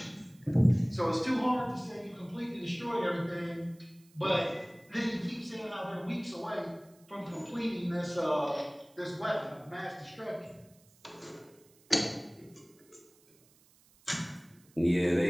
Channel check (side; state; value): right; noise; hiss, 29 dB below the sound